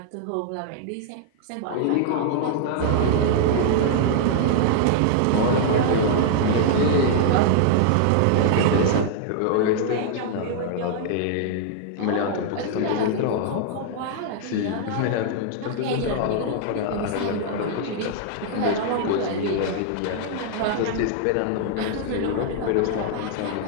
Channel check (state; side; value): different; both; correlation -0.01